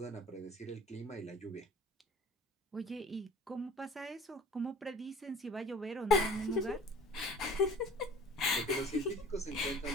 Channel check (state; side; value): normal; both; correlation 0.47